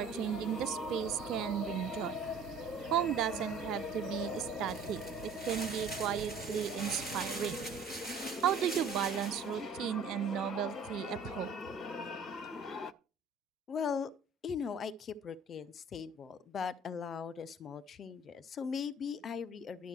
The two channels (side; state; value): left; quieter; 3.6 dB